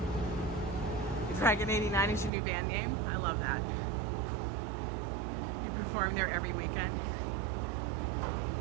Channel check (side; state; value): left; drops out; at 2.3 s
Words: Dragon 89 is your new band name? I love that. You perform there every weekend.